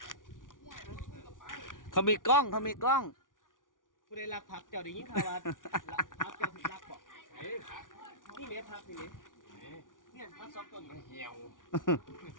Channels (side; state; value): right; late; 0.88 ms